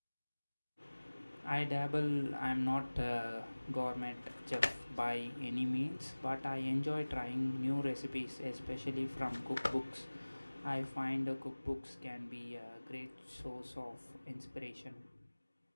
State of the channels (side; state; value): both; inverted; correlation -1.00